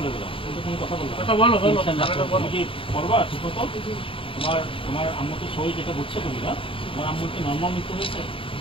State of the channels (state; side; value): late; right; 0.26 ms